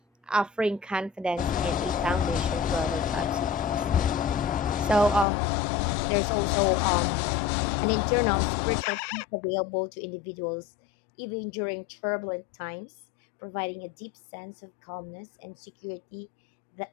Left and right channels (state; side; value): drops out; right; at 5.2 s